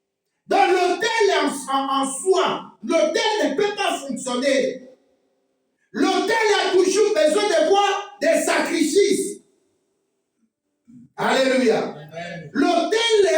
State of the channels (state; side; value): identical; both; correlation 1.00